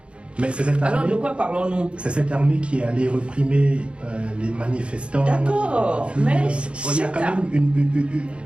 Mais c'est cette armée, alors de quoi parlons-nous? C'est cette armée qui est allée réprimer les manifestants. D'accord, mais il y a quand même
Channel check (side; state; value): left; late; 0.058 ms